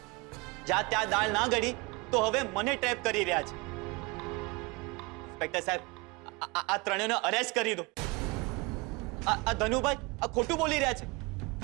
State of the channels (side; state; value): left; quieter; 26.3 dB